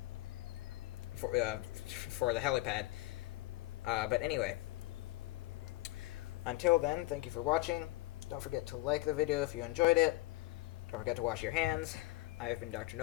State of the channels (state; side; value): quieter; right; 19.1 dB